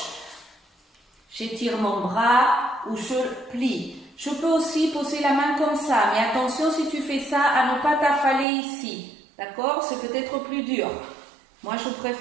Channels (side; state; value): left; drops out; at 8.5 s